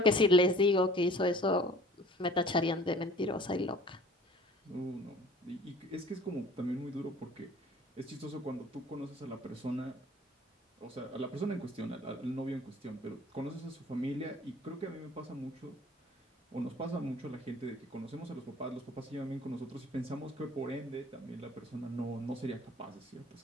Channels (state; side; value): normal; both; correlation 0.50